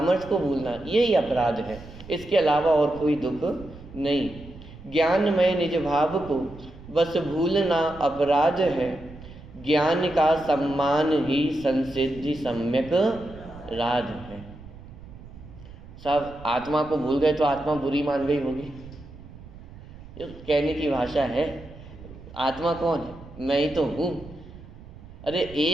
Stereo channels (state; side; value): noise; right; rumble, 17 dB below the sound